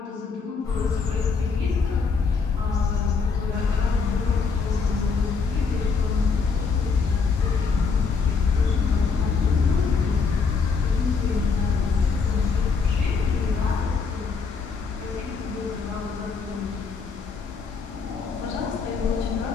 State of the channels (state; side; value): quieter; right; 5.1 dB